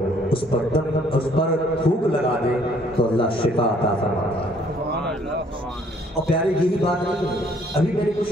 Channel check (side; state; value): both; normal; correlation 0.62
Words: اس پر تھوک لگا دے تو اللہ شفا عطا فرماتا ہے۔ اور پیارے یہی بات نہیں ہے، ابھی میں نے